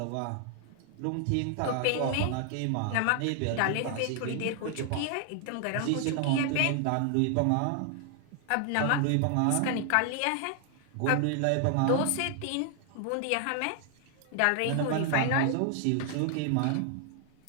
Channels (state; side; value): different; both; correlation 0.00